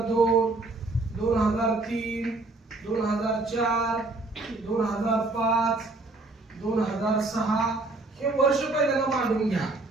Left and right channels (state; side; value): quieter; left; 3.1 dB